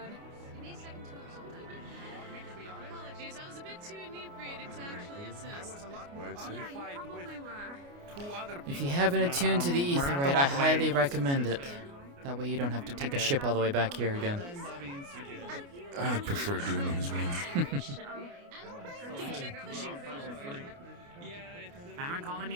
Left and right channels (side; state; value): left; late; 29 ms